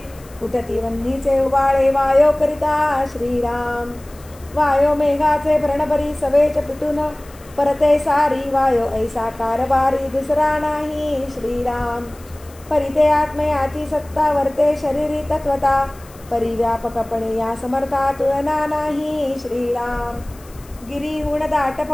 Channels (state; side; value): noise; left; hiss, 24 dB below the sound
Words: उठती वन्नीचे उबाळे वायो करिता श्रीराम. वायो मेघाचे भरणभरी सवेच पिटून परते सारी. वायो ऐसा कारभारी दुसरा नाही श्रीराम. परिते आत्मयाची सत्ता वर्ते शरीरी तत्वता. परिव्यापकपणे या समर्था तुलना नाही श्रीराम. गिरीहून दाट